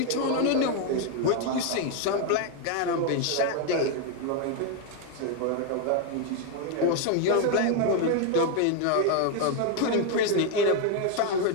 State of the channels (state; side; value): different; both; correlation 0.01